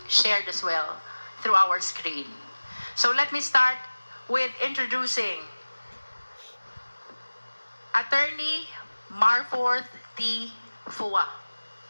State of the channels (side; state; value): both; inverted; correlation -1.00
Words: shared as well through our screen. So let me start with introducing Attorney Marforth T. Fua.